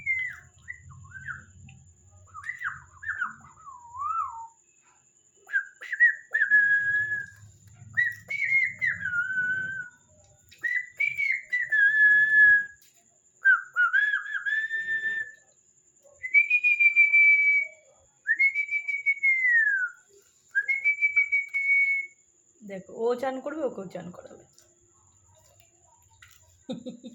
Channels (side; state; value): both; identical; correlation 1.00